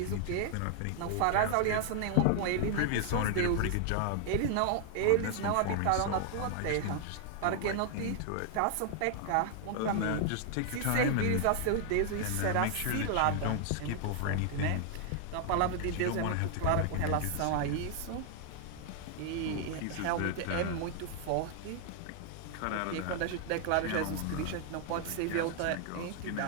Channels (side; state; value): both; different; correlation 0.00